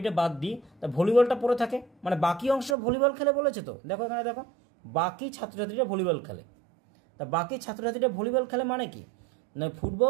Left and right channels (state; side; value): drops out; left; at 2.8 s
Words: বাদ দিই, তা ভলিবলটা পড়ে থাকে, মানে বাকি অংশ ভলিবল খেলে বলেছে। তো দেখো এখানে, দেখো বাকি ছাত্রছাত্রীরা ভলিবল খেলে, তা বাকি ছাত্রছাত্রীরা ভলিবল খেলে মানে কি না,